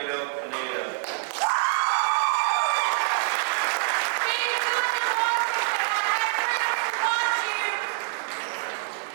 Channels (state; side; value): silent; left; 61 dB below the other